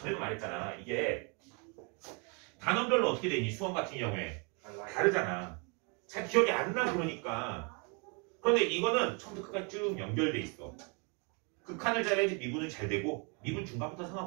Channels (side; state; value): left; quieter; 34.1 dB